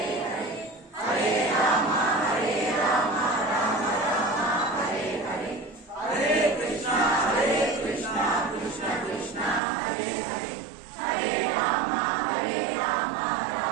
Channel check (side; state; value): left; drops out; at 9.6 s